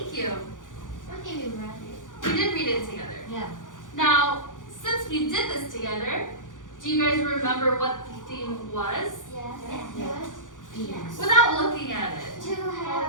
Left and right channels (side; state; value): right; late; 0.88 ms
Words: you. What did you read it? We did read it together. Yeah. Now, since we did this together, do you guys remember what the theme was? Yes. Without looking at it. To have